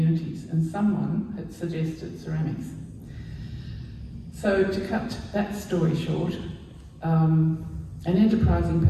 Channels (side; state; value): both; identical; correlation 1.00